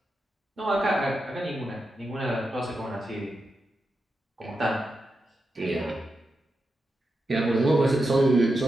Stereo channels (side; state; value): both; normal; correlation 0.88